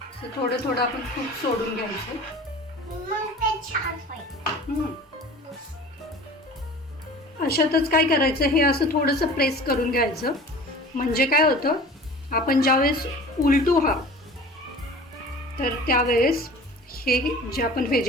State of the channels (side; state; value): both; normal; correlation 0.42